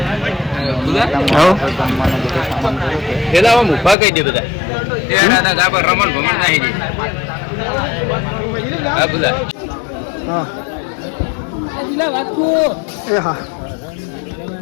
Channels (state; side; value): drops out; right; at 4.0 s